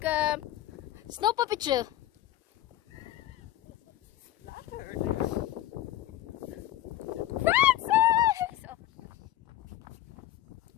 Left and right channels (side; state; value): right; quieter; 13.9 dB